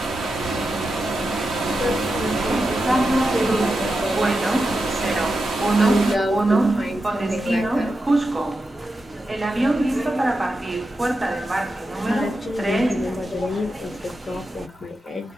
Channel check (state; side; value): normal; both; correlation 0.89